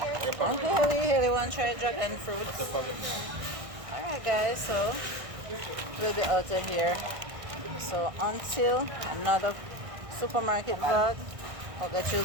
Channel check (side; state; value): left; late; 1.6 ms